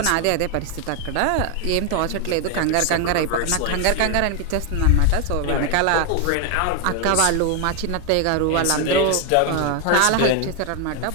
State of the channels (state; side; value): different; both; correlation 0.01